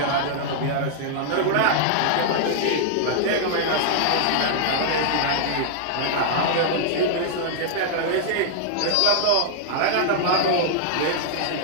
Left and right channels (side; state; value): both; different; correlation -0.01